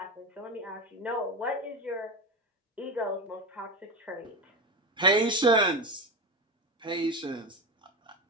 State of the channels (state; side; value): normal; both; correlation 0.19